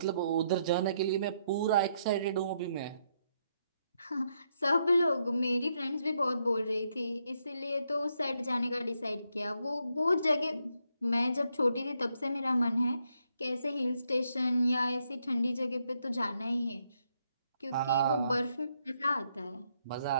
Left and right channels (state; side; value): inverted; both; correlation -0.77